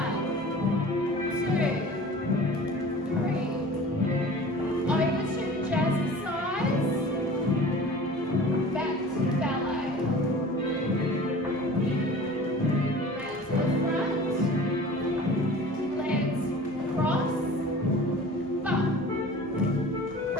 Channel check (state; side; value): normal; both; correlation 0.42